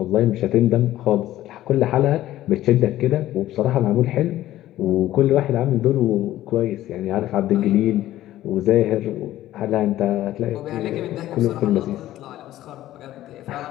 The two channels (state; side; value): quieter; right; 14.2 dB